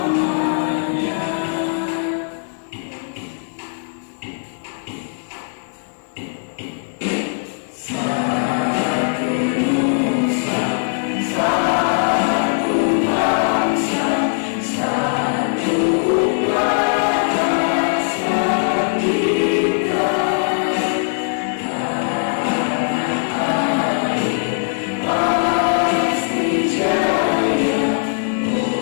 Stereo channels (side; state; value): right; silent; digital silence